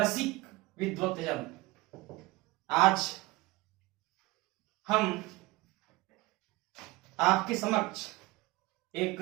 विद्वत्तजन, आज हम आपके समक्ष एक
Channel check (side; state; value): left; quieter; 21.3 dB